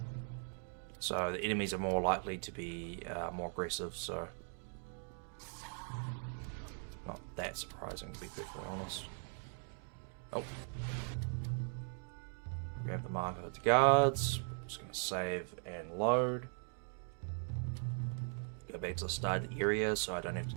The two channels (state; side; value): silent; left; 51 dB below the other